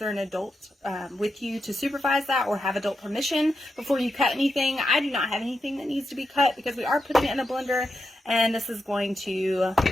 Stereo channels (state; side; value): normal; both; correlation 0.87